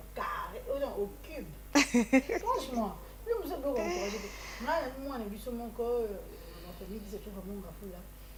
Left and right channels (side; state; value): both; identical; correlation 1.00